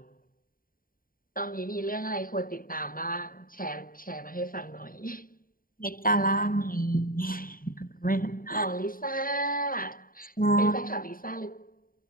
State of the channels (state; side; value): late; right; 0.41 ms